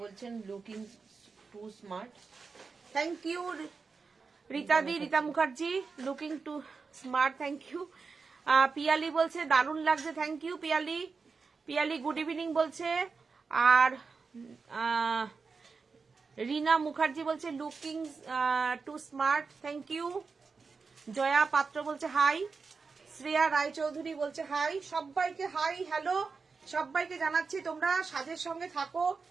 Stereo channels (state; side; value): quieter; left; 4.8 dB